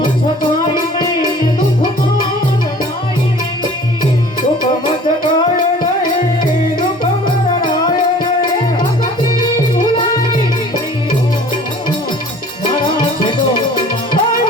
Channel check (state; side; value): normal; both; correlation 0.48